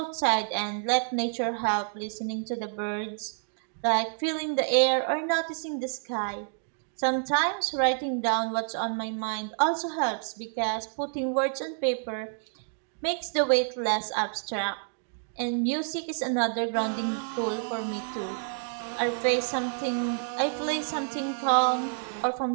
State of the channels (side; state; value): left; silent; digital silence